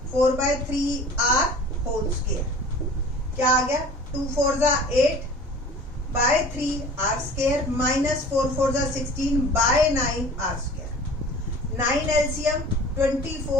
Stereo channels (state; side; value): normal; both; correlation 0.44